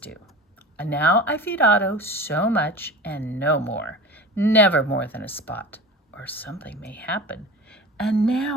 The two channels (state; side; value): normal; both; correlation 0.34